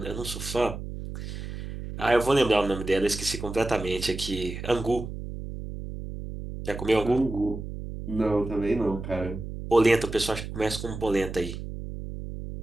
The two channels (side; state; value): right; noise; hum, 8 dB below the sound